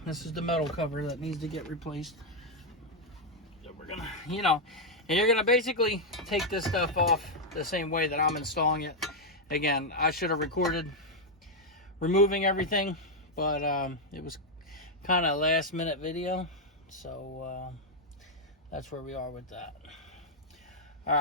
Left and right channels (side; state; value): both; normal; correlation 0.00